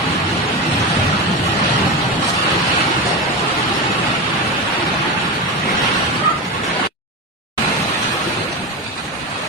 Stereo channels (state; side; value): normal; both; correlation 0.21